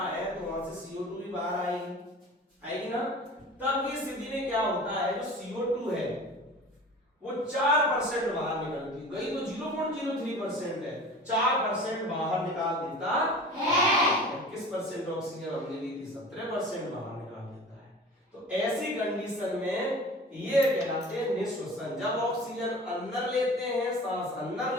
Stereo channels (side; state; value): both; normal; correlation 0.39